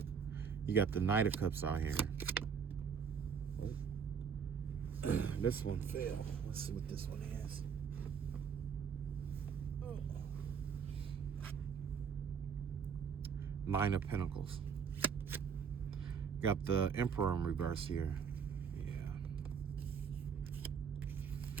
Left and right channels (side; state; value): left; quieter; 6.7 dB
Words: You got the Knight of Cups out here. This one fell. Let's see what this one is. Nine of Pentacles. Got the Emperor in reverse here.